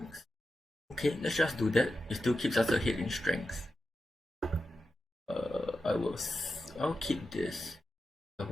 Okay, let's just do that. It still keeps us ahead in strength. I'll keep this. I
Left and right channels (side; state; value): both; normal; correlation 0.90